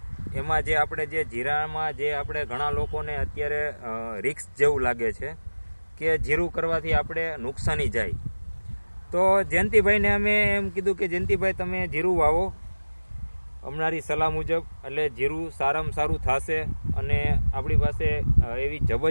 એમાં જે આપણે જે જીરામાં જે આપણે ઘણા લોકોને અત્યારે રિસ્ક જેવું લાગે છે કે જીરું કરવાથી આપણે નુકસાની જાય. તો જયંતિભાઈને અમે એમ કીધું કે જયંતિભાઈ તમે જીરું વાવો અમારી સલાહ મુજબ, એટલે જીરું સારામાં સારું થશે અને આપણી પાસે એવી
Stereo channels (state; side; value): inverted; both; correlation -1.00